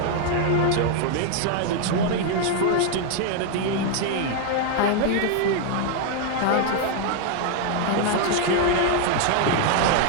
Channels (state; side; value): different; both; correlation 0.00